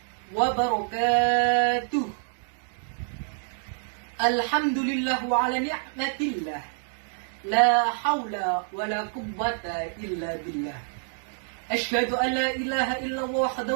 وبركاته. الحمد لله على نعمة الله، لا حول ولا قوة إلا بالله. أشهد أن لا إله إلا الله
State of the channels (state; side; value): silent; left; 60 dB below the other